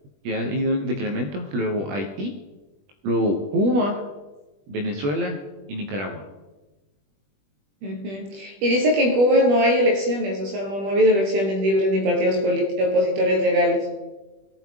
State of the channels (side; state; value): left; late; 21 ms